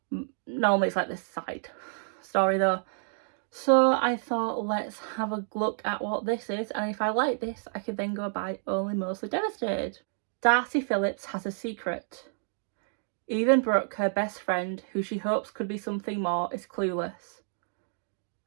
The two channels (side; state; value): left; silent; digital silence